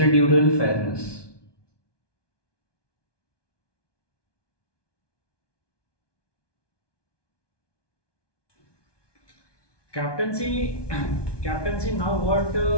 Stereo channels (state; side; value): late; right; 1.2 ms